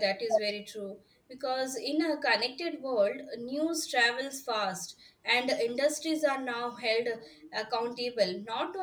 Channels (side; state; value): both; identical; correlation 1.00